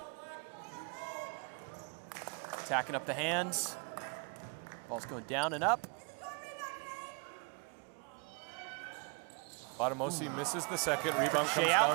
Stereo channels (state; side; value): quieter; left; 35.7 dB